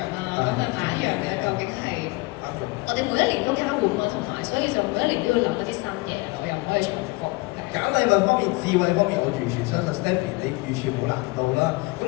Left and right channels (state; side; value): quieter; right; 23.7 dB